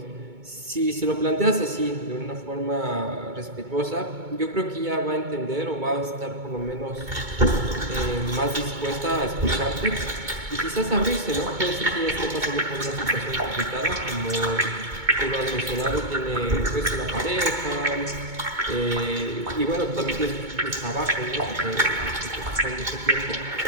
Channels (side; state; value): left; late; 2.2 ms